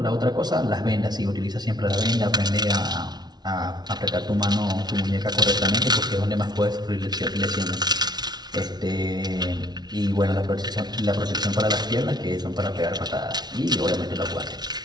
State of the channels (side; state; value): left; late; 0.19 ms